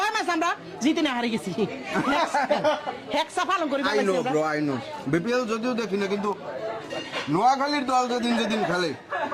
মাস আমরা জিতে না হারে গেছি। হেক্সা পালন করি I know bro, I know. BPL যদিও দেখি না, কিন্তু নোয়াখালীর দল যেদিন যেদিন খেলে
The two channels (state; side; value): identical; both; correlation 1.00